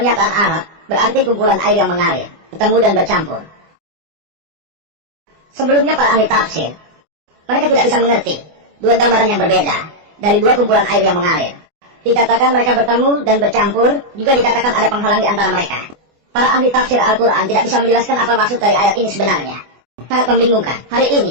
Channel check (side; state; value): left; late; 24 ms